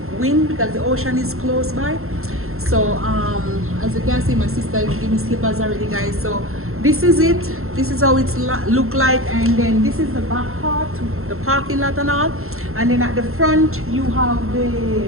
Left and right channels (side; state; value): left; late; 0.62 ms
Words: wind because the ocean is close by. So as you can see, my sister gave me slippers already, guys. So this is it. This is how it's look like, and then this is the back part, the parking lot and all. And then at the front you have